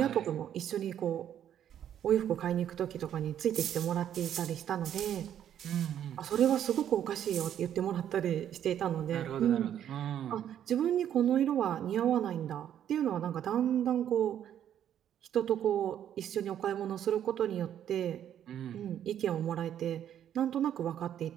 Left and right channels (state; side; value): quieter; left; 10.1 dB